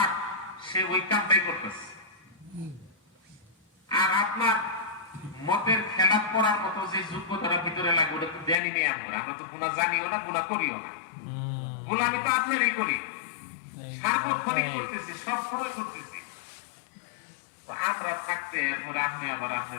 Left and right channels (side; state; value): right; drops out; at 8.6 s